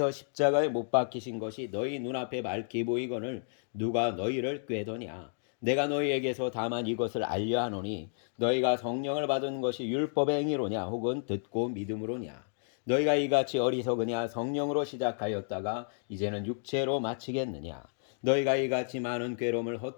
십자가에 못 박히신 것이 너희 눈앞에 밝히 보이거늘 누가 너희를 꾀더냐. 내가 너희에게서 다만 이것을 알려 하노니 너희가 성령을 받은 것이 율법의 행위로냐 혹은 듣고 믿음으로냐. 너희가 이같이 어리석으냐. 성령으로 시작하였다가 이제는 육체로 마치겠느냐. 너희가 이같이 많은 괴로움을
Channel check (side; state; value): right; silent; digital silence